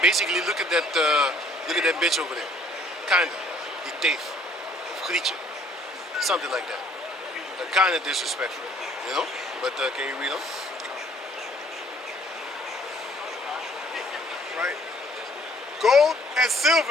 Basically, look at that bitch over there. Kinda. Die teef. Of Grietje. Something like that. Kind of disrespectful, you know? But can you read on? Right. Gold and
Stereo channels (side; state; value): both; normal; correlation 0.59